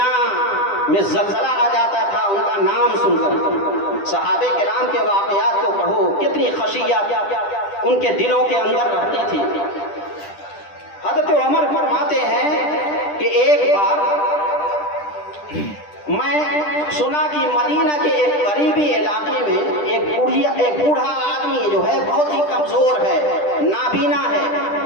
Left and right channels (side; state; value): right; late; 10 ms